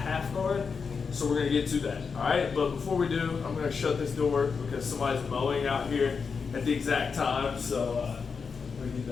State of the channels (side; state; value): right; quieter; 5.5 dB